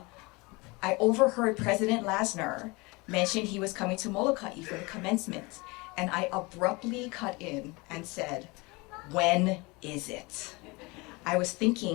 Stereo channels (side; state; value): right; quieter; 25.5 dB